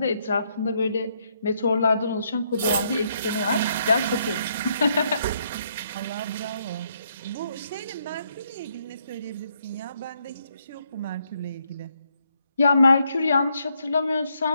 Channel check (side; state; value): both; inverted; correlation -0.74